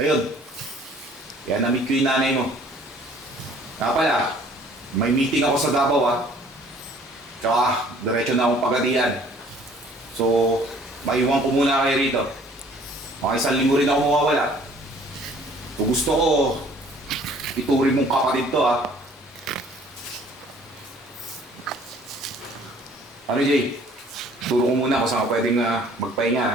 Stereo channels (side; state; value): both; normal; correlation 0.55